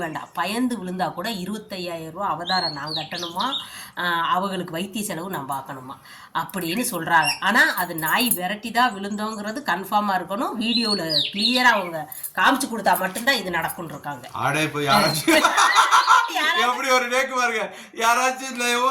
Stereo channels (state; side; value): identical; both; correlation 1.00